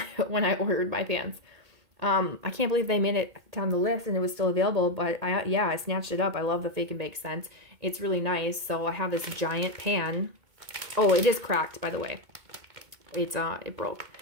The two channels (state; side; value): late; left; 2.2 ms